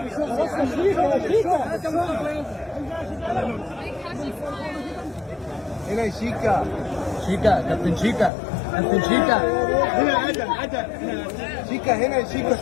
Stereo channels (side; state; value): right; drops out; at 8.3 s